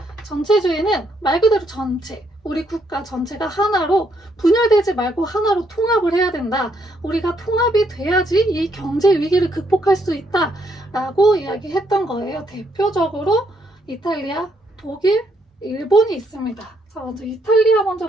전체주의는 말 그대로 전체, 우리 국가 전체가 하나로 분열되지 말고 하나로 통합을 해야 된다. 우리가 통합이 돼야지 이 경제 위기를 극복할 수 있다 라고 이야기했던 거예요. 대표적으로 이탈리아, 독일, 일본이 있습니다. 자, 먼저 이탈리아 먼저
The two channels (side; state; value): both; normal; correlation 0.73